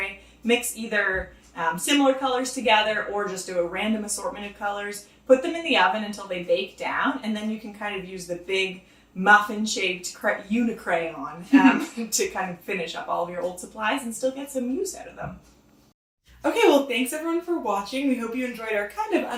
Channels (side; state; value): both; identical; correlation 1.00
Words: mix either similar colors together or just do a random assortment of colors, put them in the oven until they bake down, and then you can kind of use the big muffin-shaped unicrayon to kind of finish up all of your old supplies and still get some use out of them. Okay, well, thanks everyone for watching. We hope you enjoyed our kind of